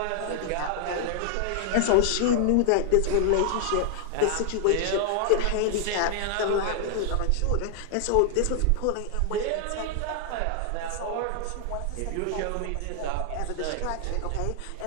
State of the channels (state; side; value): different; both; correlation 0.00